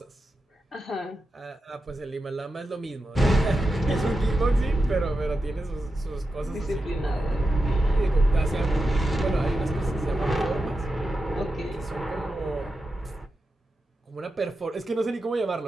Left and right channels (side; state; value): both; normal; correlation 0.90